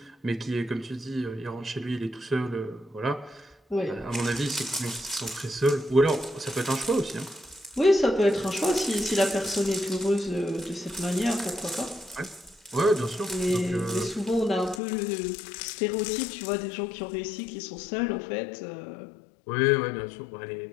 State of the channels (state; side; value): drops out; right; at 14.8 s